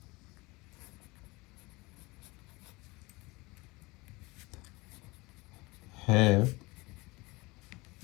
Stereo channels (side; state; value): right; quieter; 23.6 dB